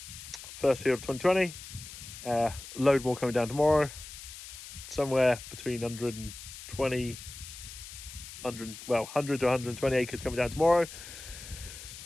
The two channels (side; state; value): left; noise; hiss, 13 dB below the sound